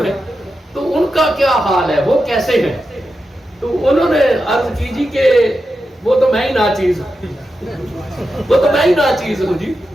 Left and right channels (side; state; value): both; normal; correlation 0.89